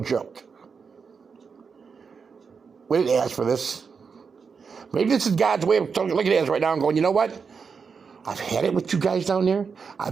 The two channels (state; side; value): quieter; left; 5.6 dB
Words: joke. We didn't ask for this. Maybe this is God's way of looking at us right now and going, you know what? I've had it with you guys down there.